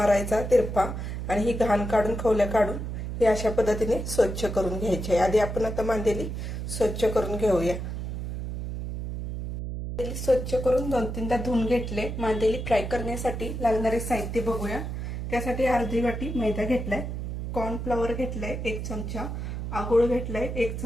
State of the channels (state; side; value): noise; right; hum, 5 dB below the sound